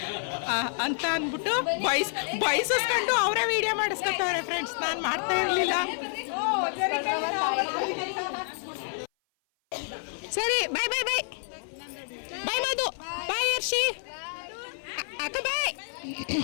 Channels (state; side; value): silent; right; 56 dB below the other